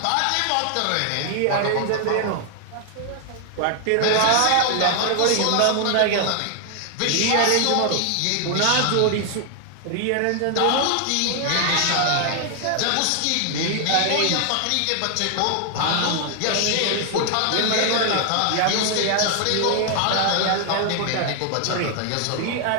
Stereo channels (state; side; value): different; both; correlation 0.00